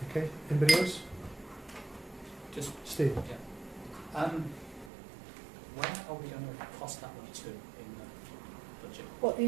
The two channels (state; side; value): drops out; left; at 4.9 s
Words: Okay. Anybody else? Just Steve. yeah. Where are we going to cost that one to in the budget? What, the